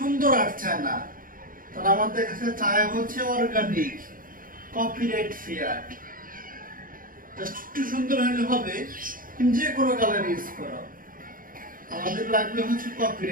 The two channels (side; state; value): left; late; 0.41 ms